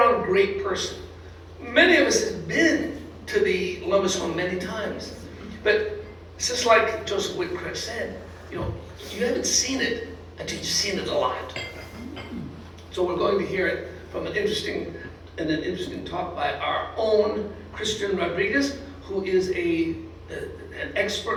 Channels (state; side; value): identical; both; correlation 1.00